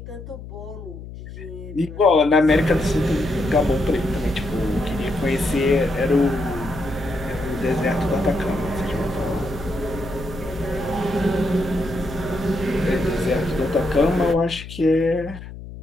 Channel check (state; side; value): noise; left; hum, 13 dB below the sound